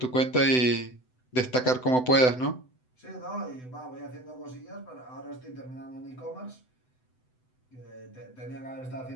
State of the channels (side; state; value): right; late; 7.9 ms